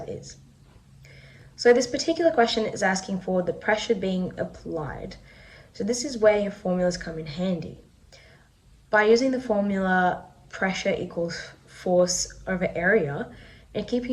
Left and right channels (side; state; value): both; identical; correlation 1.00